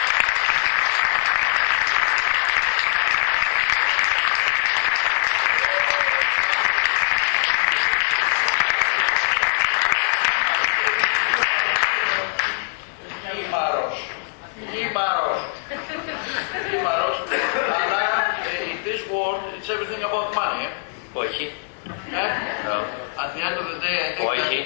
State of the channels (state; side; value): silent; right; 64 dB below the other